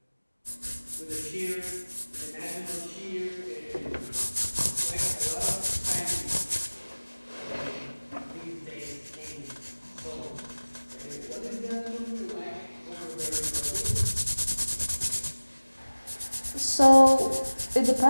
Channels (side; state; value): both; inverted; correlation -1.00